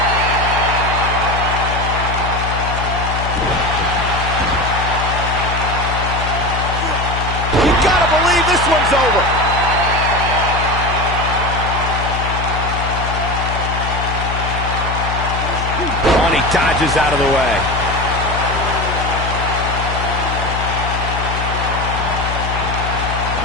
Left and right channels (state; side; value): noise; left; hum, 4 dB below the sound